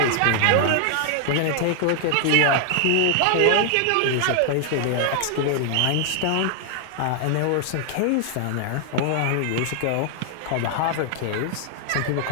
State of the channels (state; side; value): different; both; correlation 0.00